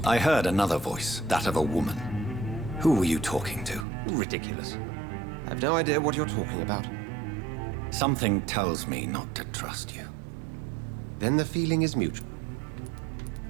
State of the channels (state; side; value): drops out; left; at 3.9 s